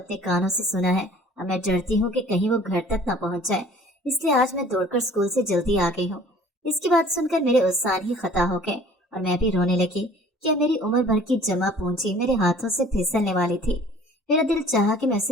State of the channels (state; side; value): normal; both; correlation 0.50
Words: कानों से सुना है। अब मैं डरती हूँ कि कहीं वो घर तक न पहुँच जाए, इसलिए आज मैं दौड़कर स्कूल से जल्दी आ गई हूँ। इसकी बात सुनकर मेरे उत्साह ही खता हो गए और मैं भी रोने लगी। क्या मेरी उम्र भर की जमा पूंजी मेरे हाथों से फिसलने वाली थी। मेरा दिल चाहा कि मैं